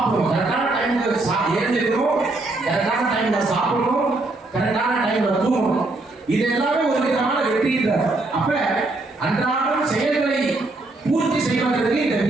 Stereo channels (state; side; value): quieter; left; 3.0 dB